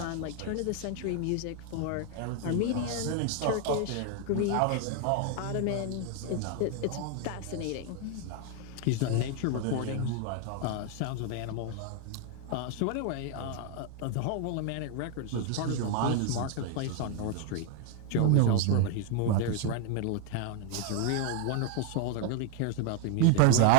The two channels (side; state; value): both; different; correlation 0.00